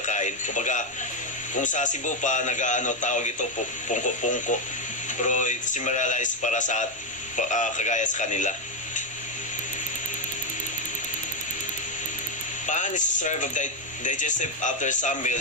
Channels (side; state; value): both; normal; correlation 0.05